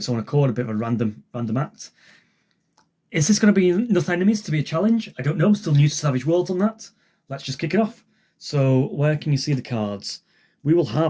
own accord, a bit of a random act. Is this going to be enough enemies to be a challenge? I don't know. I'm still new to Savage Worlds on that. Let's just kick it off. So where can you see the cards? We will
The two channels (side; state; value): both; identical; correlation 1.00